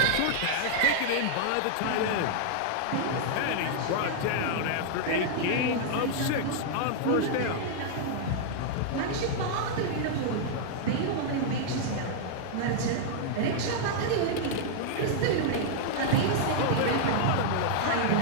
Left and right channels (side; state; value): both; different; correlation -0.01